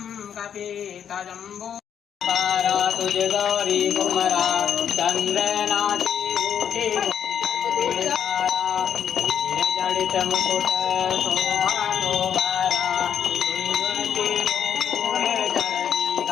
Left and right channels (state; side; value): quieter; right; 8.7 dB